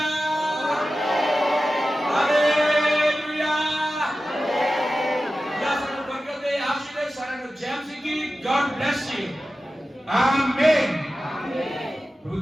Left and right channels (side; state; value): both; normal; correlation 0.94